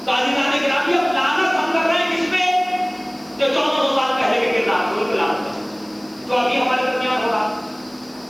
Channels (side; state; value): left; noise; hiss, 27 dB below the sound